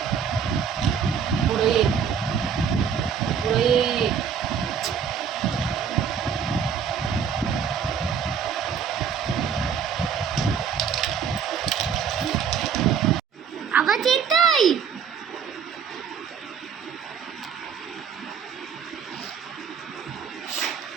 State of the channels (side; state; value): left; quieter; 7.1 dB